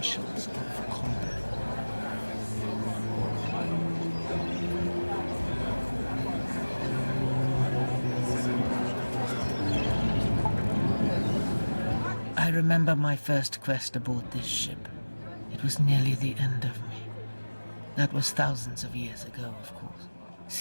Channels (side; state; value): both; inverted; correlation -1.00